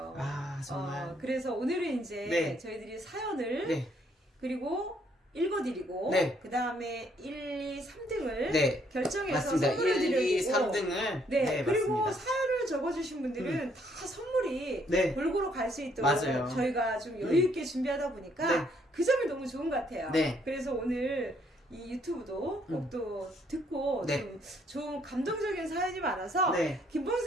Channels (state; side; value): normal; both; correlation 0.68